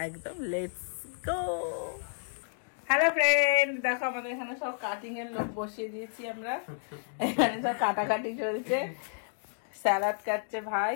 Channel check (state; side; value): silent; right; digital silence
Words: একদম লেটস গো। হ্যালো ফ্রেন্ড, দেখো আমাদের এখানে সব কাটিং এর লোক বসিয়ে দিয়েছি আমরা। এখানে সব কাটাকাটি চলছে, স্যালাড কাটছে ভাই,